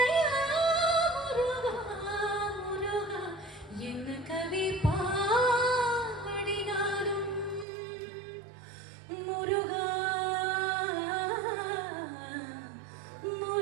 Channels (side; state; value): left; drops out; at 7.7 s